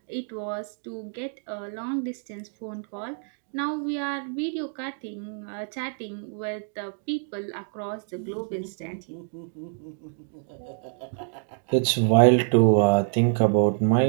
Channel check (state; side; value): silent; left; 59 dB below the other